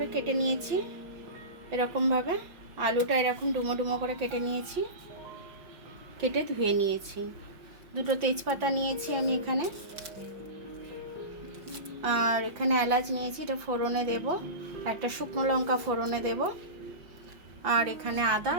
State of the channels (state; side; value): late; left; 5.9 ms